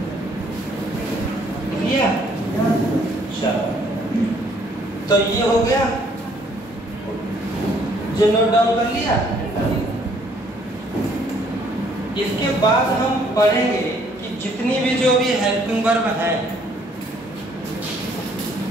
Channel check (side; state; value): both; normal; correlation 0.63